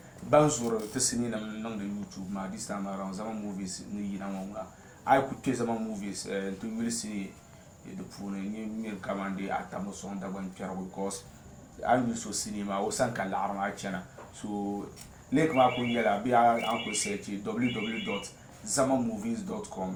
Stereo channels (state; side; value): identical; both; correlation 1.00